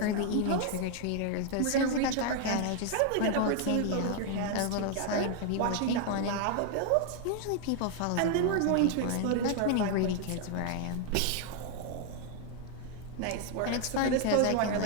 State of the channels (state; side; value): different; both; correlation 0.00